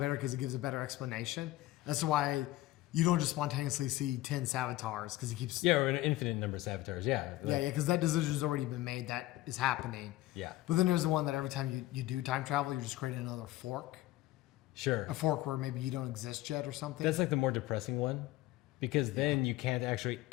because it gives a better explanation. That's why you don't just spontaneously see 10 Savatars because he keeps. Yeah, or an infinite number of Savatars. Yeah. Yeah, because that decision's already been made. That is happening. Yeah. But then there's the one that every time you do time travel, you're just creating another fork. Sure. A fork where maybe you don't exist yet or something. That's like the more depressing one because then you can't actually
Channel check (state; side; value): quieter; right; 16.8 dB